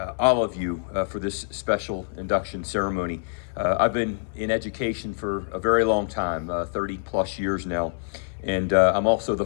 all of you for this special induction ceremony. I've been in education for a very long time, 30 plus years now, and I'm also the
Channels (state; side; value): silent; right; 61 dB below the other